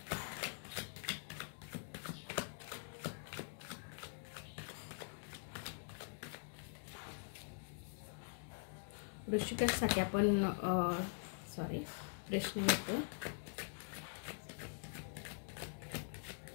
ऋषिकेशसाठी आपण प्रश्न घेतो.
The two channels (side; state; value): right; silent; digital silence